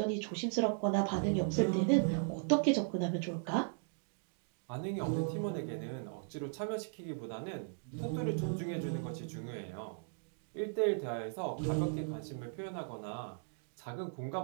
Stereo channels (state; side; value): silent; left; digital silence